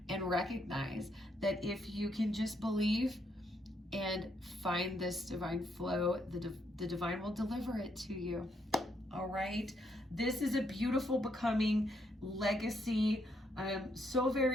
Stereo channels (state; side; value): normal; both; correlation 0.75